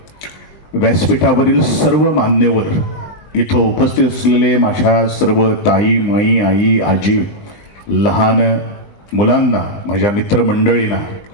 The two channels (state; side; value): late; right; 20 ms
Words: व्यासपीठावरील सर्व मान्यवर, इथं उपस्थित असलेले माझ्या सर्व ताई, माई, आई, आजी, लहान मुलांना, माझ्या मित्रमंडळींना,